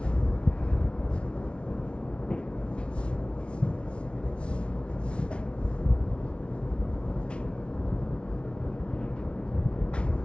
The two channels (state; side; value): late; right; 0.058 ms